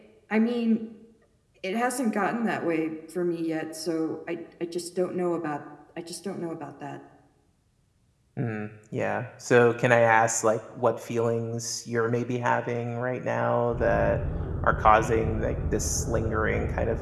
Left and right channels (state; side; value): identical; both; correlation 1.00